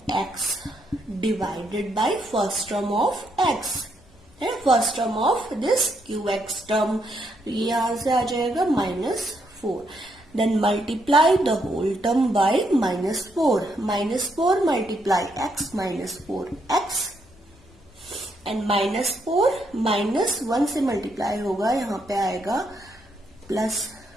divided by first term of x है, first term of this qx term, ये यहां से आ जाएगा -4, then multiply the whole term by -4, -4 multiply x -4x, and -4 -1 से मल्टीप्लाई होगा, यहाँ पे आएगा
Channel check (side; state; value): left; noise; hum, 29 dB below the sound